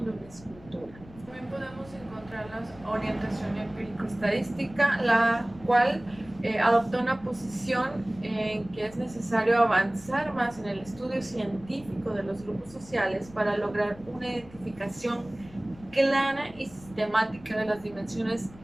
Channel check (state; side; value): noise; left; rumble, 21 dB below the sound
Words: de una escultura. También podemos encontrar la orientación empírico-estadística, la cual adopta una posición en que es necesario avanzar más en el estudio científico de los grupos sociales para lograr una identificación clara y sistemática de las dimensiones